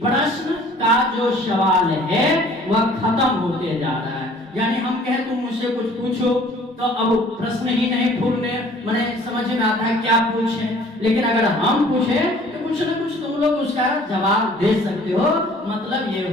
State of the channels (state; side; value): normal; both; correlation 0.53